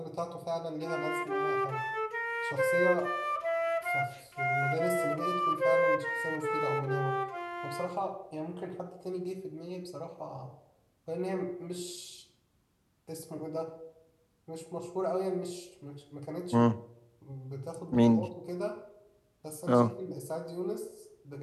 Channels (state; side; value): identical; both; correlation 1.00